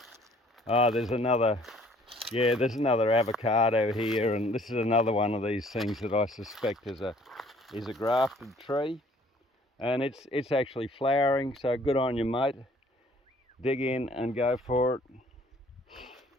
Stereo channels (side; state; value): both; normal; correlation 0.57